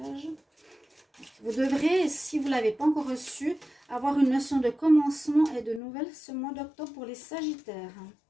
Vous devrez, si vous ne l'avez pas encore reçu, avoir une notion de commencement et de nouvelles ce mois d'octobre pour les Sagittaires.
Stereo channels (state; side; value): drops out; right; at 5.8 s